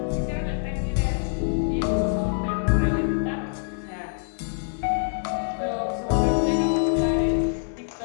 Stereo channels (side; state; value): right; silent; digital silence